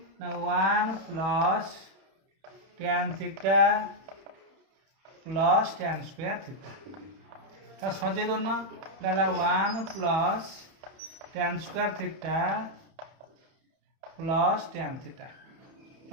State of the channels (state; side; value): late; left; 31 ms